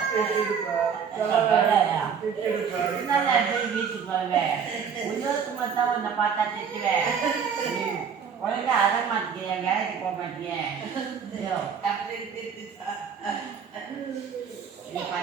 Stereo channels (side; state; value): left; quieter; 6.8 dB